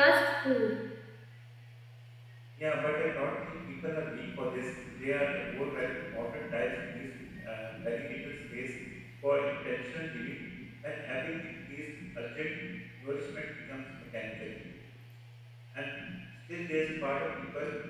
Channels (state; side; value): identical; both; correlation 1.00